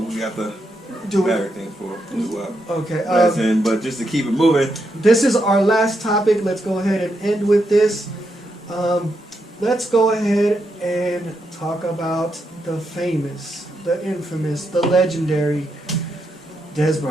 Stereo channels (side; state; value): both; normal; correlation 0.82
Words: we got to do everything for. Okay. But just to keep it moving. This is our last topic. Let's go ahead and end with this. Let's go ahead and talk about the famous, the infamous, the legendary Dez